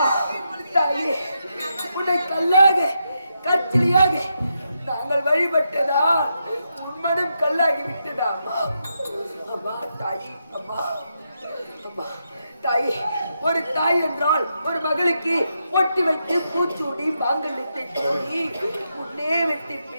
தாயே, உன்னை கல்லாக கற்சிலியாக நாங்கள் வழிபட்டதா உன்மனம் கல்லாகி விட்டதா? அம்மா தாயே, அம்மா அம்மா தாயே, ஒரு தாய் என்றால் ஒரு மகளுக்கு பொட்டி வைத்து பூச்சூடி மாங்கல்யத்தை சூடி முன்னே வெட்டி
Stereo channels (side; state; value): both; inverted; correlation -0.83